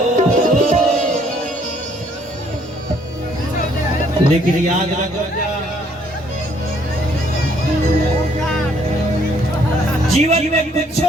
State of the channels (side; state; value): both; normal; correlation 0.65